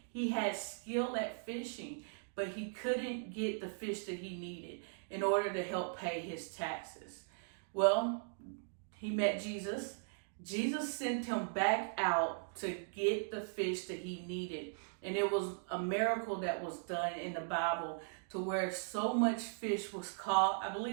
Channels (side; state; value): left; silent; digital silence